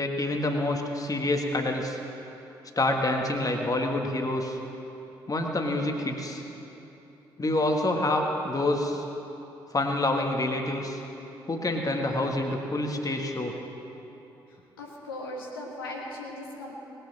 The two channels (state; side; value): normal; both; correlation 0.62